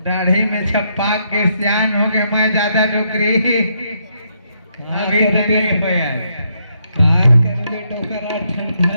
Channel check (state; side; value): inverted; both; correlation -0.76